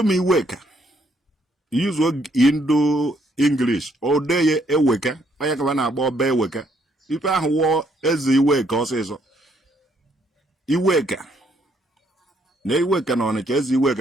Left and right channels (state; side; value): normal; both; correlation 0.70